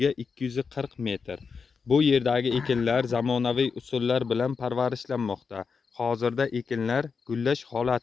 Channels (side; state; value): right; quieter; 5.4 dB